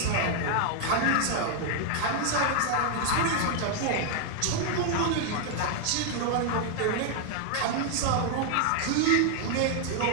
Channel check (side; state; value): both; different; correlation 0.00